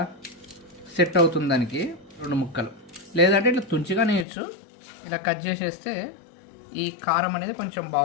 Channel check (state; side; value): drops out; right; at 4.2 s